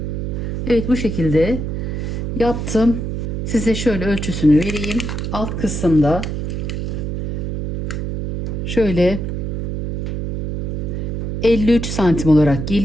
Evet, bu şekilde yaptım. Size şöyle ölçüsünü vereyim. Alt kısımda şöyle 53 santim olarak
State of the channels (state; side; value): noise; right; hum, 3 dB below the sound